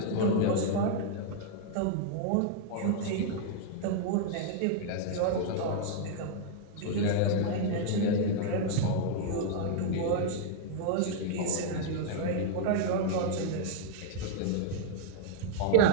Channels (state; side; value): different; both; correlation 0.00